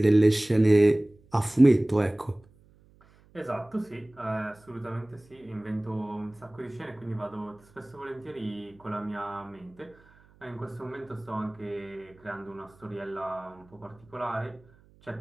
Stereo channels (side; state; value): right; noise; hum, 29 dB below the sound